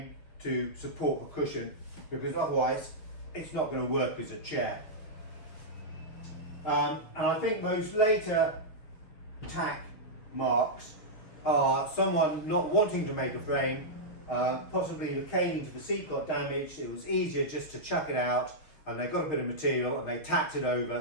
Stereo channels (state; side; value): late; right; 6.4 ms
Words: to support the cushion, because otherwise it's not going to work as a chair. And I think those later tack marks are someone not wanting to make a frame, possibly the caning to the seat got damaged, it was easier just to chuck it out, and they got a bit of material and they tacked it